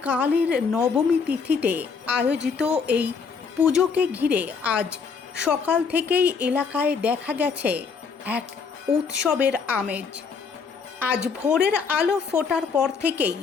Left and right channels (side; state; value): right; quieter; 5.6 dB